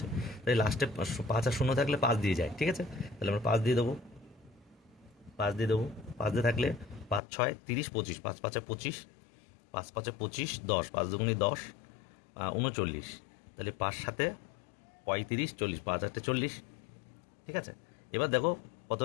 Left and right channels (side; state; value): right; drops out; at 7.2 s